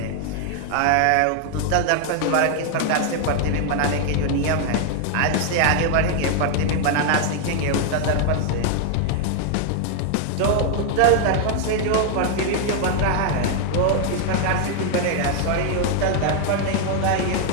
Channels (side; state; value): both; different; correlation 0.00